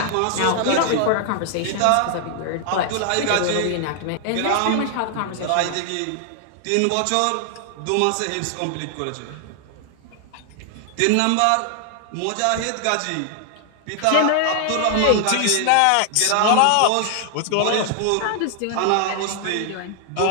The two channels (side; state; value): both; different; correlation 0.00